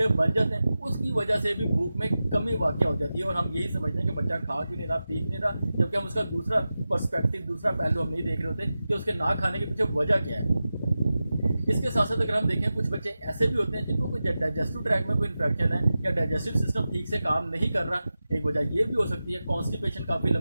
बन जाते हैं, उसकी वजह से भी भूख में कमी वाक़या हो जाती है। और हम यही समझते हैं कि बच्चा खा क्यों नहीं रहा, पी क्यों नहीं रहा, जबकि हम उसका दूसरा पर्सपेक्टिव, दूसरा पहलू हम नहीं देख रहे होते कि उसके ना खाने के पीछे वजह क्या है। इसके साथ साथ अगर हम देखें कुछ बच्चे ऐसे भी होते हैं जिनको कोई डाइजेस्टिव ट्रैक में कोई इन्फेक्शन है या डाइजेस्टिव सिस्टम ठीक से काम नहीं कर रहा। एक वजह ये भी हो सकती है कॉन्स्टिपेशन काफ़ी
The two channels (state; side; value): inverted; both; correlation -0.94